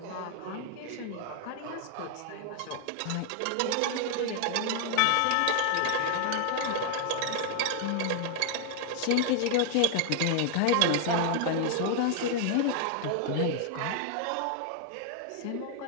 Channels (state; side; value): different; both; correlation 0.00